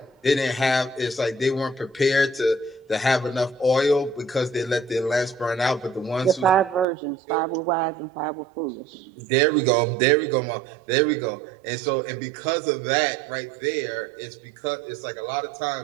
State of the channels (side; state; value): left; drops out; at 6.9 s